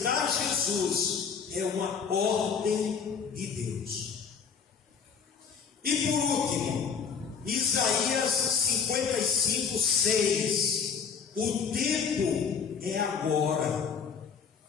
Jesus é uma ordem de Deus. E por último, Isaías 55:6. O tempo é agora.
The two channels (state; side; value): quieter; right; 6.4 dB